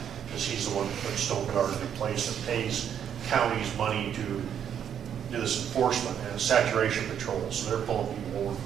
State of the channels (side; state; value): left; quieter; 8.9 dB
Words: because he's the one that put Stone Garden in place and pays counties money to do this enforcement and saturation patrol. So they're pulling people over